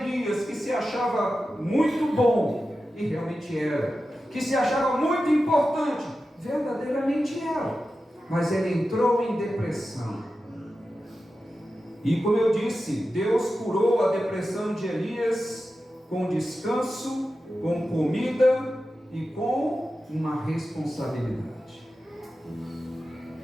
que se achava muito bom, e realmente era, que se achava muito importante, verdadeiramente era, mas ele entrou em depressão. E como eu disse, Deus curou a depressão de Elias com descanso, com comida e com uma responsabilidade.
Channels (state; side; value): normal; both; correlation 0.92